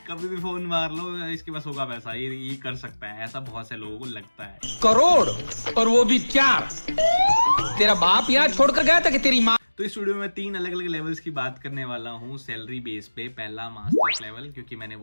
कभी भी फोन मार लो, इसके पास होगा पैसा, ये कर सकता है, ऐसा बहुत से लोगों को लगता है। करोड़, और वो भी 4। तेरा बाप यहाँ छोड़कर गया था कि तेरी माँ। तो इस वीडियो में 3 अलग अलग लेवल्स की बात करने वाला हूँ सैलरी बेस पे। पहला मास्टर्स लेवल, क्योंकि मैंने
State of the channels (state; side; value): inverted; both; correlation -1.00